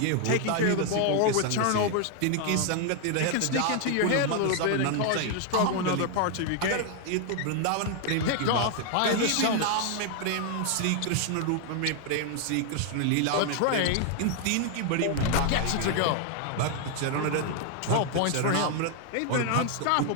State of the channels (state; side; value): different; both; correlation 0.00